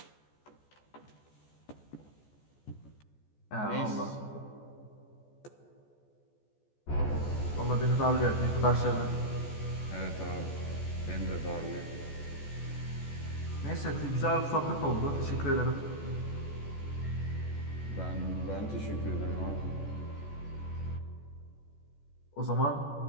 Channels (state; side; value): late; right; 14 ms